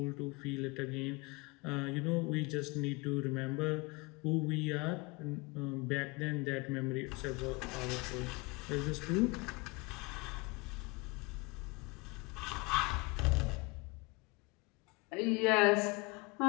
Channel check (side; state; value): right; quieter; 27.1 dB